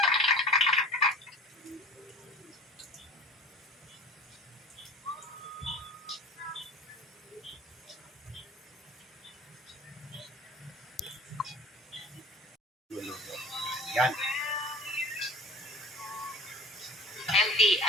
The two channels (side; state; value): both; normal; correlation 0.42